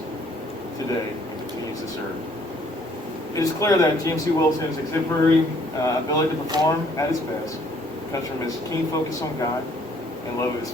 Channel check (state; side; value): normal; both; correlation 0.62